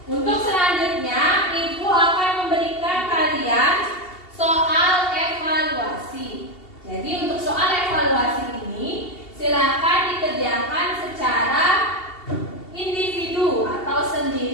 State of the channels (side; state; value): right; late; 2.7 ms